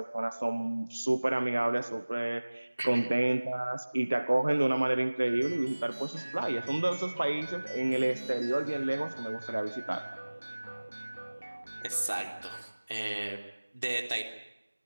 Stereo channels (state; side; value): inverted; both; correlation -1.00